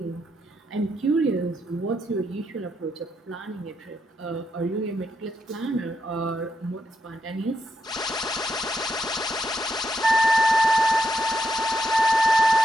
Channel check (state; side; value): normal; both; correlation 0.81